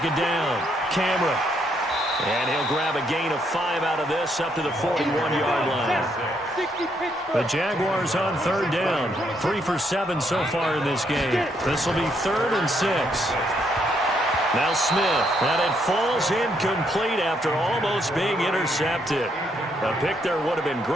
down, Cameron. And he'll grab a gain of 5 out of this up to the 41-yard line. The Jaguars on third down. 3 for 7 so far in this game. This will be 3rd and 6. Now Smith, and it falls incomplete after almost being intercepted. A pick there would have been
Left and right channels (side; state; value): both; normal; correlation 0.74